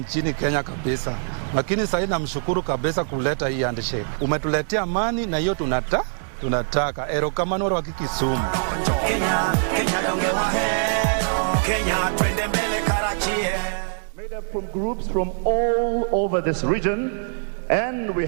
Kenya kabisa. Lakini sasa namshukuru kabisa kuleta hii handshake. Umetuletea amani na hiyo tunataka. Erokamano wa Kisumu. Made up from groups from all over this region. And we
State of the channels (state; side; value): silent; left; digital silence